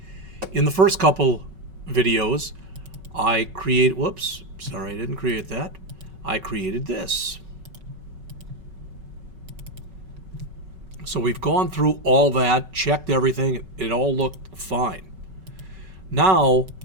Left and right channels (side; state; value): left; late; 5.3 ms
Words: In the first couple videos, I created this. So we've gone through all that, checked everything, it all looked fine. Now,